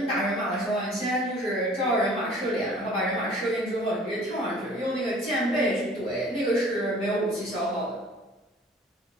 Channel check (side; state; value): both; normal; correlation 0.49